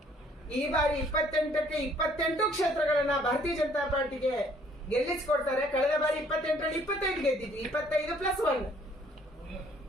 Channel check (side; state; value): both; normal; correlation 0.61